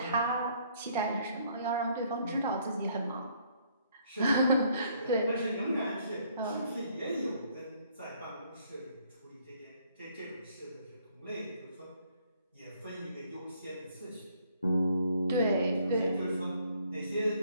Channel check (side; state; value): both; inverted; correlation -0.66